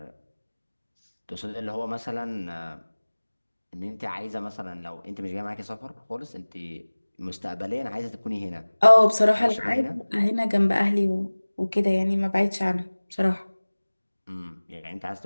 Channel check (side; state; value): both; inverted; correlation -1.00